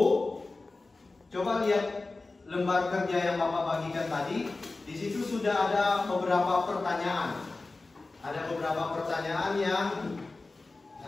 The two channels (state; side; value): quieter; right; 3.4 dB